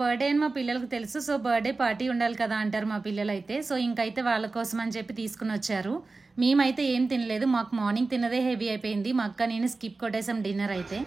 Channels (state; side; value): quieter; left; 3.7 dB